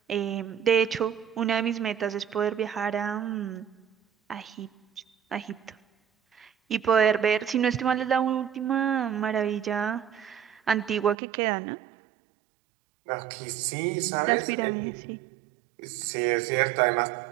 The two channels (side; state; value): left; drops out; at 11.2 s